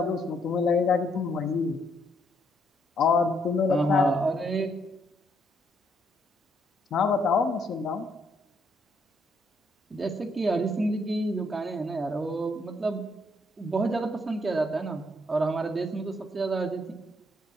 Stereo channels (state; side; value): normal; both; correlation 0.72